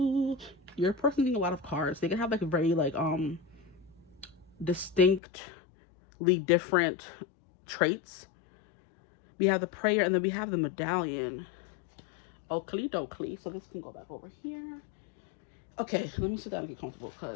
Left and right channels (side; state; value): right; drops out; at 5.2 s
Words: Your person getting a lot of cards. They can have like a very like distinctly different traits. We have the prayer, and then we have the medallion. Oakley dokley. So this can go back over here. Okay, let me sit down and get comfortable